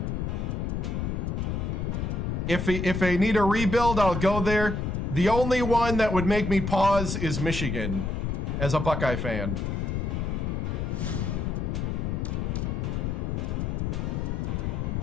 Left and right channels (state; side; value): noise; left; rumble, 1 dB below the sound